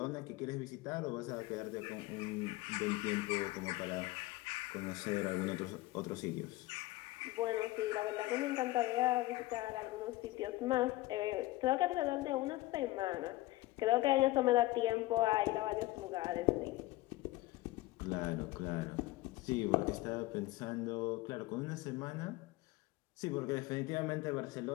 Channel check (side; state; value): right; quieter; 18.8 dB